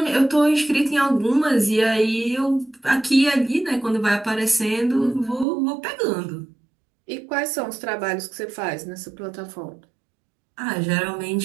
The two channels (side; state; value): left; drops out; at 5.5 s